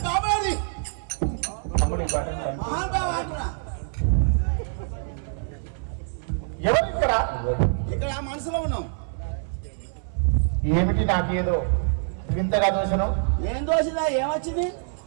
ఎవరు ఇక్కడ? ఇక్కడ మనసులో ఉన్నాం. ఏమిటి నాకేదో వింతగా దోషను? ఏం దోషిదా? ఏమొచ్చింది?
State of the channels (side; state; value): left; silent; 56 dB below the other